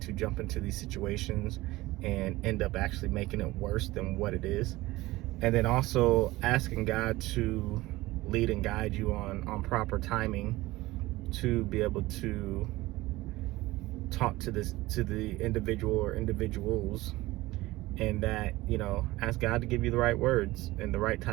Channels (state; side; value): quieter; left; 18.9 dB